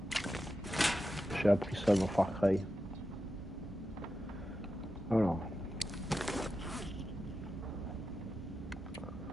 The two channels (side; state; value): both; normal; correlation 0.90